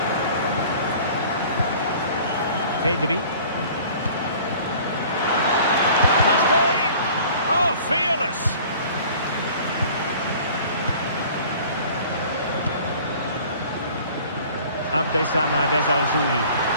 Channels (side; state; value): both; inverted; correlation -0.48